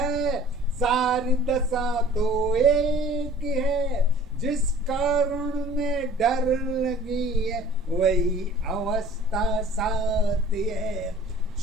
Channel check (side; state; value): both; normal; correlation 0.48